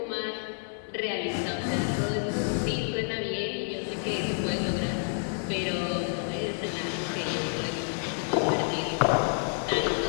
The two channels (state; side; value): silent; right; digital silence